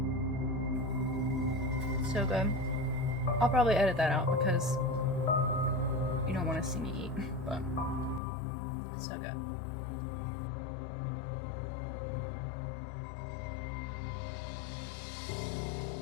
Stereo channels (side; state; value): right; drops out; at 8.2 s